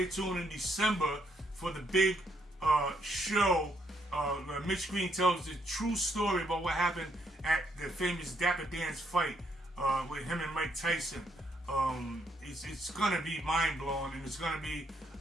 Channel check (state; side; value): normal; both; correlation 0.73